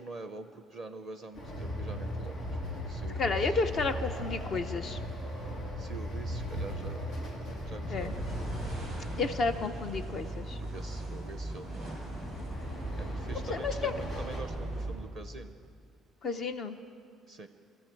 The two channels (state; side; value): normal; both; correlation 0.62